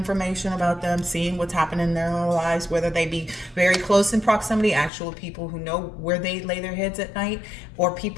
about them, seeing what's happening in their own lives, whether they be very close in proximity, actual people who know where they lay their heads at night, or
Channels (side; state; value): right; drops out; at 4.9 s